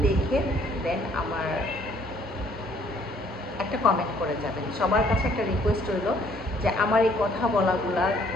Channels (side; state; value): both; normal; correlation 0.62